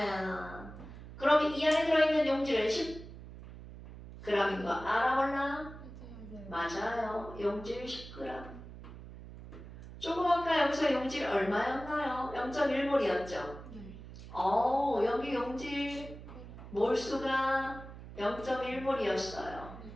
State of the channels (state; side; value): noise; right; hum, 14 dB below the sound